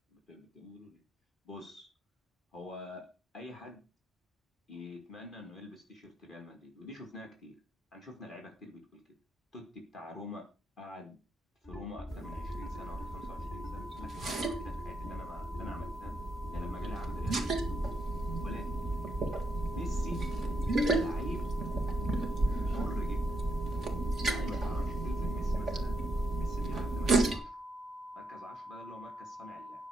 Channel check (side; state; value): both; normal; correlation 0.79